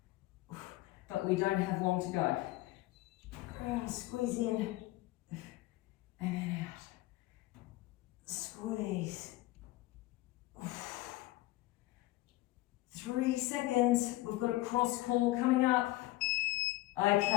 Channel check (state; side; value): quieter; right; 17.9 dB